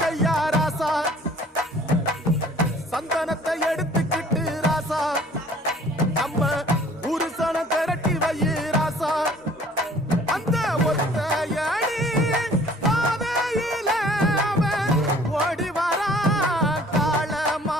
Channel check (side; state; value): both; normal; correlation 0.53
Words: ராசா, சந்தனத்தை எடுத்துக்கிட்டு ராசா, நம்ம புருஷனை திரட்டி வை ராசா.